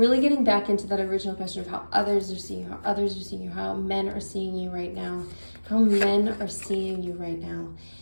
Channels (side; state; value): both; inverted; correlation -1.00